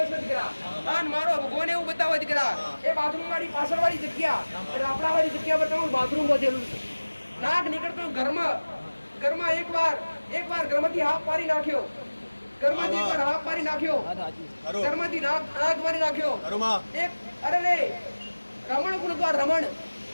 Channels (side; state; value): both; inverted; correlation -1.00